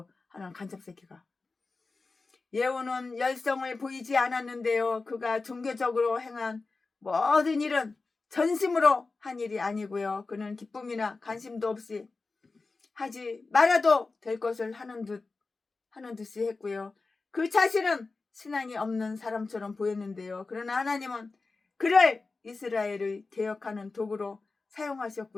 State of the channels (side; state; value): right; quieter; 3.9 dB